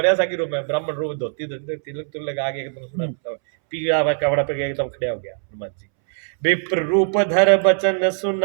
सा की रूप है, ब्राह्मण रूप, धोती तिलक तुलक लगा के एकदम सुना पीला हुआ कपड़ा पे एकदम खड़े हो गया हनुमान जी। विप्र रूप धर बचन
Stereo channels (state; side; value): silent; left; 65 dB below the other